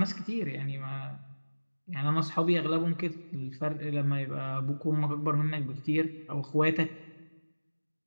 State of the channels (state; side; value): inverted; both; correlation -1.00